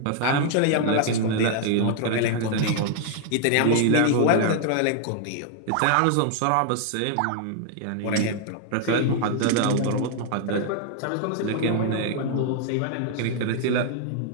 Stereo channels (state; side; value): different; both; correlation 0.00